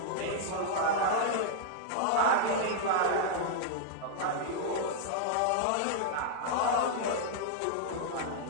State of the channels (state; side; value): different; both; correlation -0.02